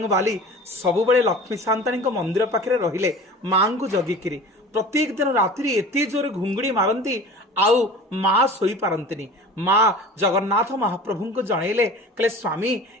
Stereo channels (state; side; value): normal; both; correlation 0.39